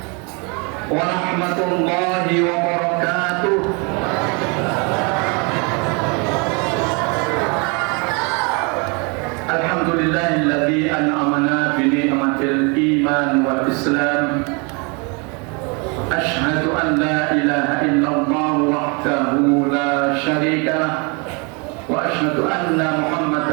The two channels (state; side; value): quieter; left; 32.0 dB